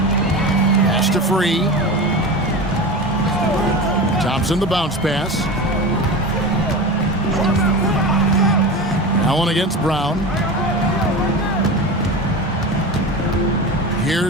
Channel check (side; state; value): both; normal; correlation 0.27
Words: to Free. Thompson the bounce pass. Allen against Brown.